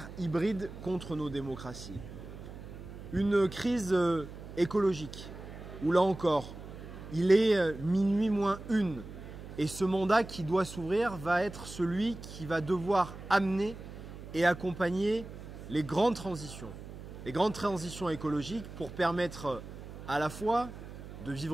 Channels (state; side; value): noise; right; hum, 13 dB below the sound